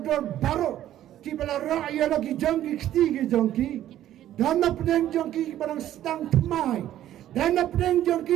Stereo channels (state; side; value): quieter; left; 12.4 dB